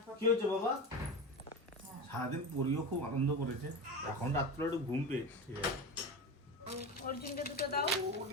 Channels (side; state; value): both; normal; correlation 0.24